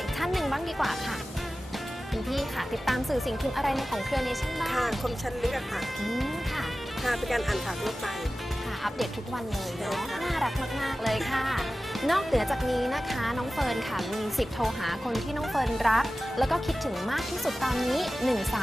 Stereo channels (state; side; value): normal; both; correlation 0.96